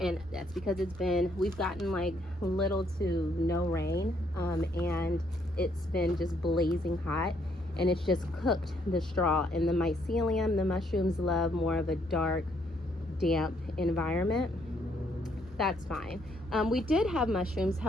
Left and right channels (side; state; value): both; normal; correlation 0.70